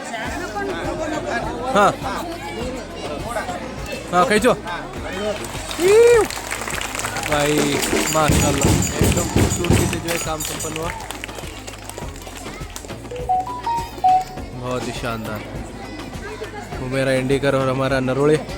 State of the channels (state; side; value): identical; both; correlation 1.00